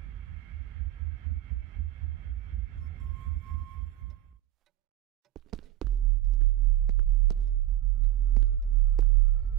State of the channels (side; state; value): left; quieter; 13.8 dB